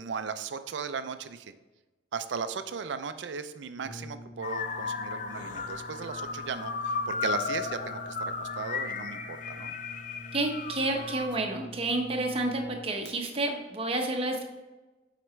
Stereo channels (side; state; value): both; normal; correlation 0.05